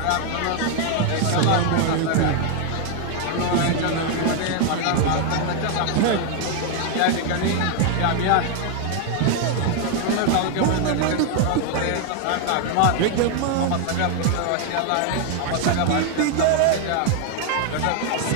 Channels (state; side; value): different; both; correlation 0.00